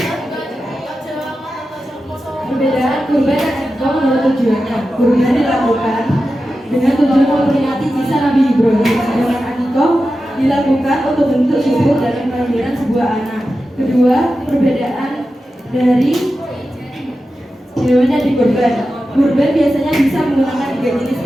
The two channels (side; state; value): both; normal; correlation 0.92